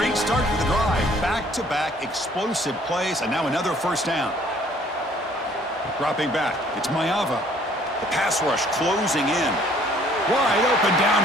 start to the drive. Back-to-back explosive plays, and now another first down. Dropping back, it's Mayava. The pass rush closing in. Wide open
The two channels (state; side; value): normal; both; correlation 0.59